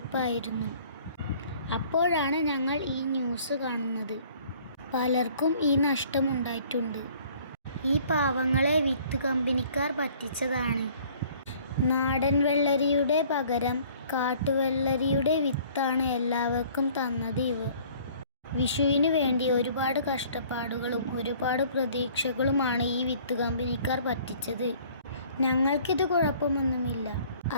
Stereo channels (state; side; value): inverted; both; correlation -0.55